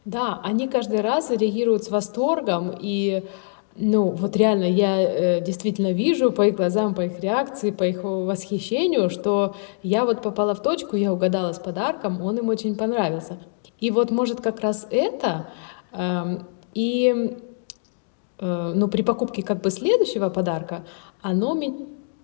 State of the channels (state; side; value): silent; right; digital silence